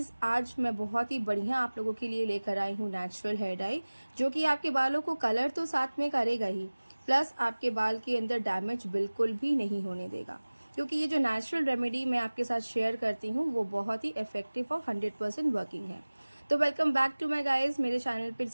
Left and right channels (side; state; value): both; inverted; correlation -1.00